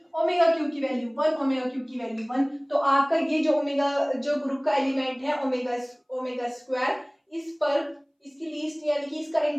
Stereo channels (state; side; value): identical; both; correlation 1.00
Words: क्यूब की वैल्यू 1, ओमेगा क्यूब की वैल्यू 1, तो आपका ये जो ओमेगा जो ग्रुप का एलिमेंट है ओमेगा स्क्वायर, इस पर इसकी लीस्ट यानी कि इसका